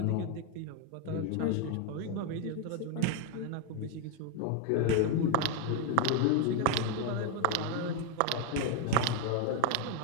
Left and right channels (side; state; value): both; different; correlation 0.01